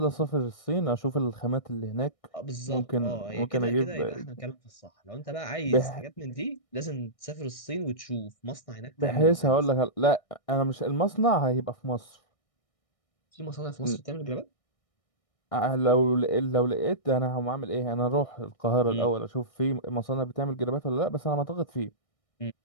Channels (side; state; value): right; late; 1.6 ms